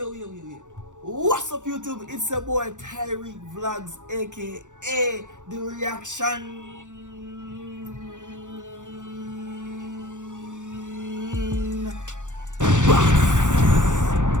What's up, YouTube? It's your boy Tyrekevlogs, aka The Reaction.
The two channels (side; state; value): left; late; 0.85 ms